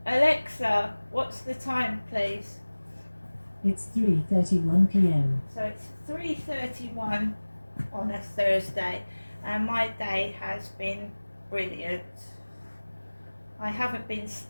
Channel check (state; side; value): inverted; both; correlation -1.00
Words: Alexa, what's the time, please? It's 3:31 p.m. So it's 3:31 on a Thursday and my day has been brilliant. I haven't been